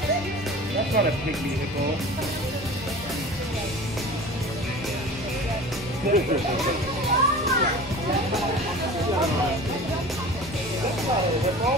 That's not a big vehicle.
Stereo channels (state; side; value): normal; both; correlation 0.39